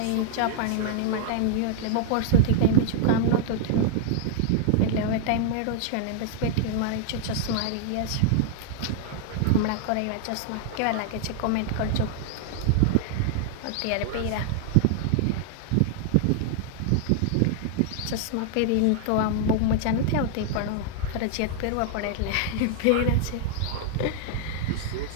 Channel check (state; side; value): different; both; correlation 0.00